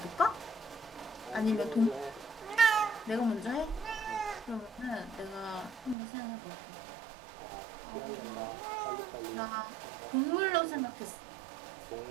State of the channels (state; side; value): drops out; left; at 6.0 s